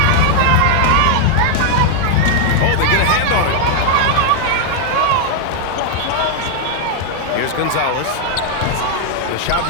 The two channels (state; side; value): different; both; correlation 0.00